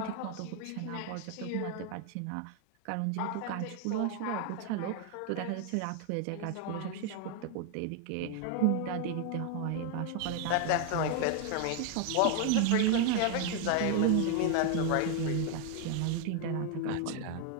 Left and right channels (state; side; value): different; both; correlation 0.01